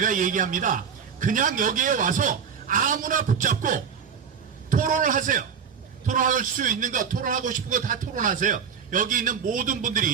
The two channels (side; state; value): left; quieter; 6.9 dB